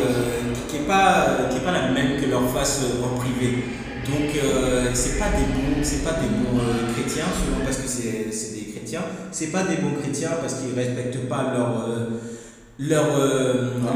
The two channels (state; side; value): identical; both; correlation 1.00